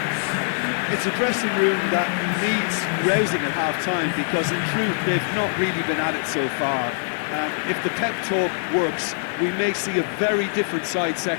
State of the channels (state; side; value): silent; right; digital silence